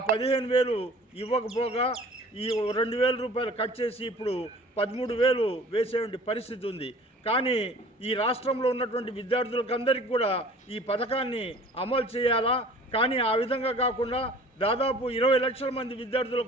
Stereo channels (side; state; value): both; normal; correlation 0.47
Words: 15,000 ఇవ్వకపోగా ఈ 2,000 రూపాయలు కట్ చేసి ఇప్పుడు 13,000 వేసే పరిస్థితి ఉంది. కానీ ఈ రాష్ట్రంలో ఉన్నటువంటి విద్యార్థులకందరికీ కూడా ఈ పథకాన్ని అమలు చేయాలా, కానీ ఆ విధంగా కాకుండా దాదాపు 20 లక్షల మంది